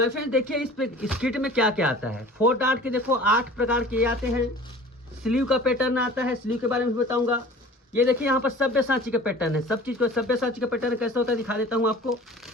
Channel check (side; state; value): both; normal; correlation 0.44